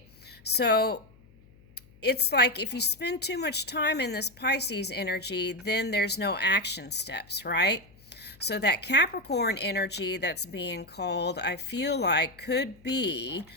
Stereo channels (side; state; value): left; noise; hum, 26 dB below the sound